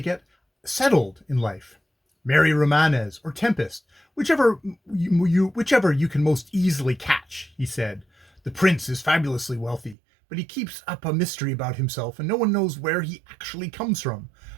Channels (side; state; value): left; drops out; at 10.0 s